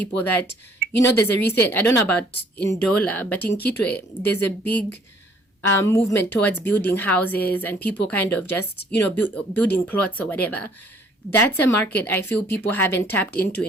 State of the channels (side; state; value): both; normal; correlation 0.60